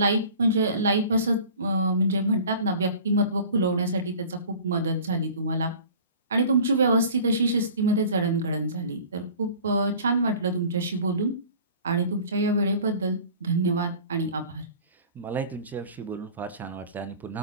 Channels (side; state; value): both; inverted; correlation -0.44